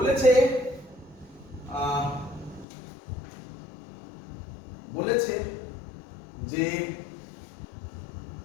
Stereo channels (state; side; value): drops out; right; at 2.7 s